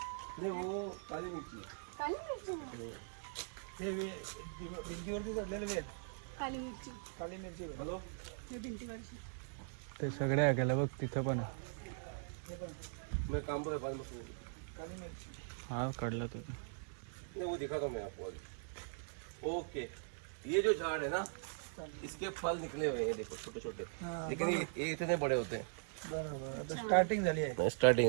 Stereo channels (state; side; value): silent; left; digital silence